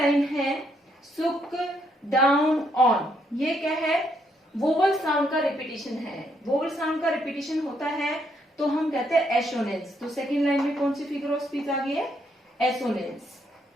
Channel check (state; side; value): normal; both; correlation 0.74